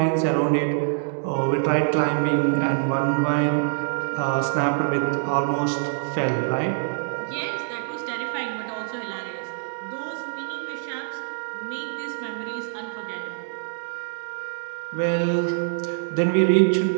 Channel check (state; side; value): silent; left; 62 dB below the other